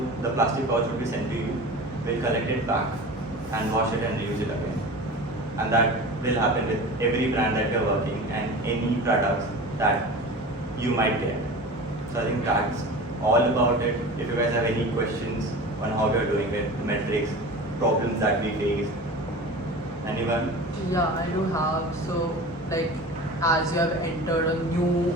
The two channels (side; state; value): both; normal; correlation 0.34